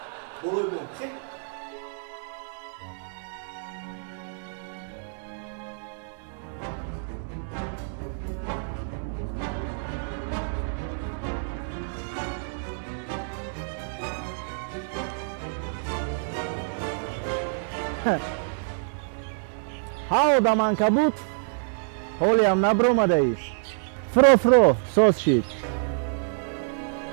بروی بون خیلی Hau da mancabut, holiam na broma de aici. Fro, sos shit.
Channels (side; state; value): left; silent; digital silence